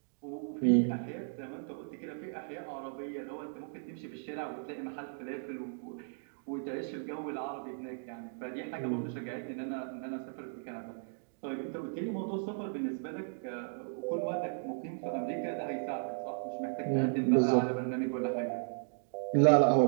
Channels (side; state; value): left; silent; digital silence